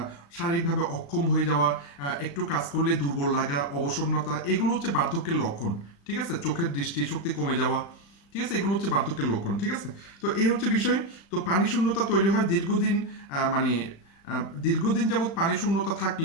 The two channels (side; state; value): right; late; 36 ms